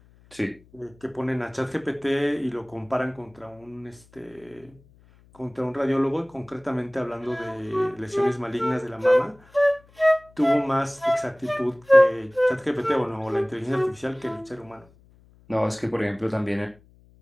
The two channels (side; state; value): left; noise; hum, 28 dB below the sound